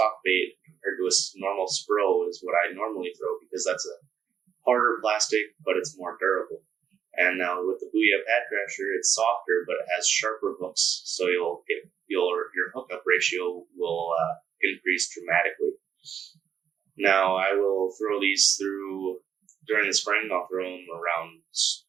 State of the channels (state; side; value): quieter; left; 8.1 dB